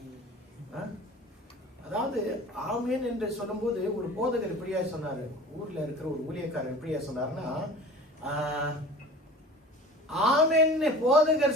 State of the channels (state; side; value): normal; both; correlation 0.40